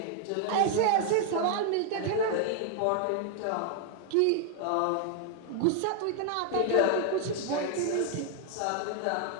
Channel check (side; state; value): both; different; correlation 0.00